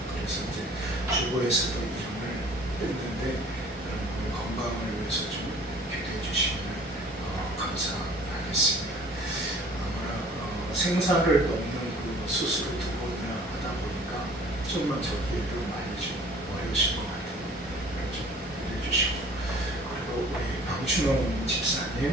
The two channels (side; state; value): both; normal; correlation 0.50